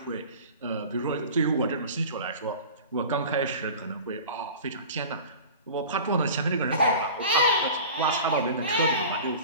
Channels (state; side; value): inverted; both; correlation -0.38